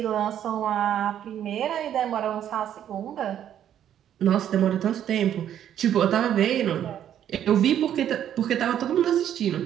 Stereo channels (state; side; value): quieter; left; 10.3 dB